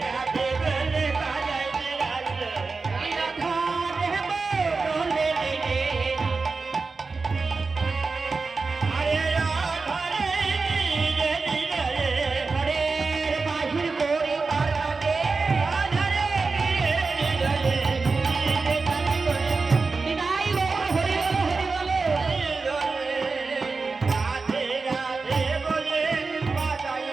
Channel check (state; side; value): quieter; left; 4.2 dB